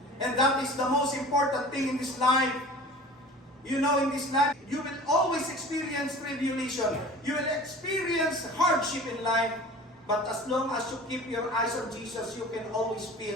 And that is the most important thing in this life. You know, in this life, you will always experience tribulation. You will experience hardship in life. But as long as you keep your eyes on Jesus, you can always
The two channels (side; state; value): both; normal; correlation 0.41